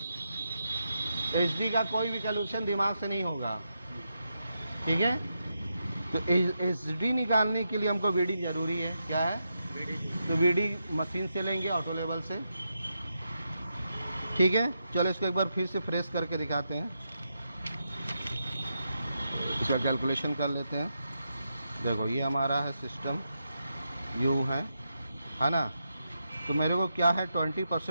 एचडी का कोई भी कैलकुलेशन दिमाग से नहीं होगा, ठीक है। तो एचडी निकालने के लिए हमको वीडी जरूरी है। क्या है? तो वीडी मशीन से लेंगे, ऑटो लेवल से, ठीक है। चलो इसको एक बार फिर से फ्रेश करके दिखाते हैं। इसका कैलकुलेशन कर लेते हैं। देखो ये हमारा है सिस्टम, यू है ना। तो मेरे को क्या है?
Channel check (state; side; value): inverted; both; correlation -0.85